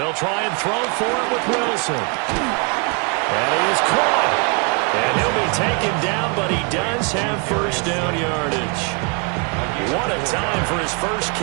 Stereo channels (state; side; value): quieter; left; 33.2 dB